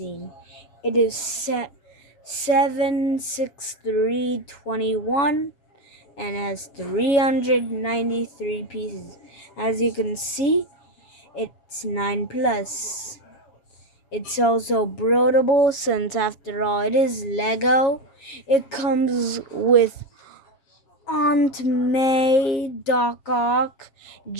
It is set 7/6/3/21 and has 393 pieces. As you can see, it's 9+. It's also broadable since after all it is Lego. It comes with Aunt May, Doc Ock,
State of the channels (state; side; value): late; right; 7.3 ms